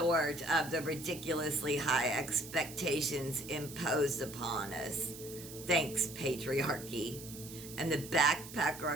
of the ridiculously high expectations imposed upon us. Thanks, patriarchy. And the backpacker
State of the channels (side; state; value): right; noise; hiss, 13 dB below the sound